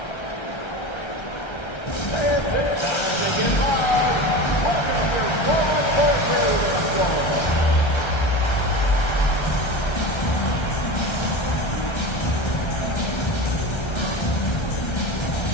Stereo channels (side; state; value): right; late; 1.3 ms